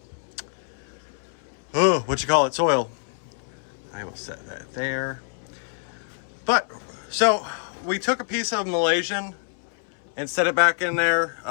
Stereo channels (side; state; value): right; silent; 61 dB below the other